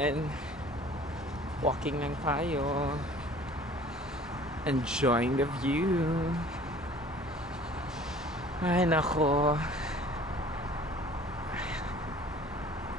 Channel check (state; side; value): normal; both; correlation 0.49